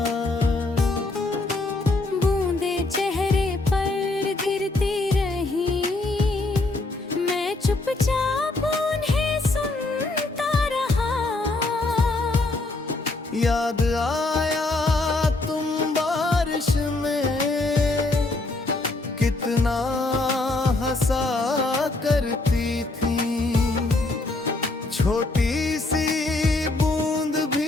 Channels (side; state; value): right; quieter; 3.1 dB